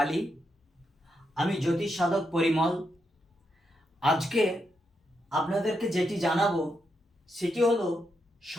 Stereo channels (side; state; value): both; normal; correlation 0.82